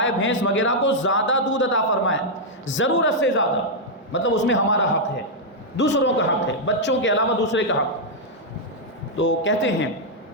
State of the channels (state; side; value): normal; both; correlation -0.04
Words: بھینس وغیرہ کو زیادہ دودھ عطا فرمایا، ضرورت سے زیادہ، مطلب اس میں ہمارا حق ہے، دوسروں کا حق ہے، بچوں کے علاوہ دوسرے کا حق۔ تو کہتے ہیں